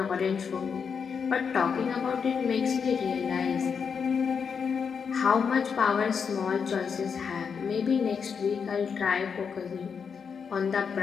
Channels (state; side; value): quieter; right; 6.3 dB